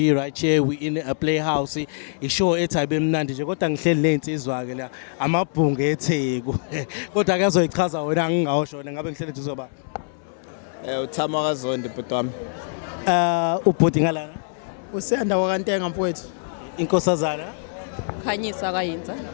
right here. We in a playhouse. Ishow ethi ayibe mnandi nje kodwa ngihleli lensizwa ke la amabhungu eTheku. Kodwa ake azoyichaza wena ngingawushona ngabe ngihleli nje uzoba. Uthakaselwa bhuti wami. Ubhuti ngalana. Usenda wakantenga mfowethu. Inkosazana. Khanyisa kayinza.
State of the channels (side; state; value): right; silent; 63 dB below the other